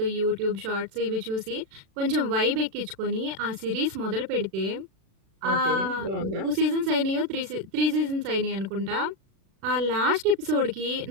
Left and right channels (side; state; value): left; late; 36 ms